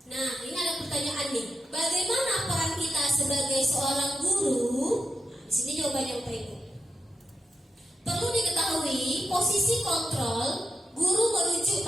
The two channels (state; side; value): normal; both; correlation 0.87